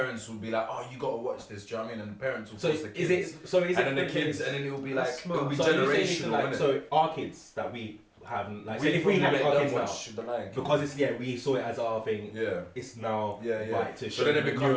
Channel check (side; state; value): both; identical; correlation 1.00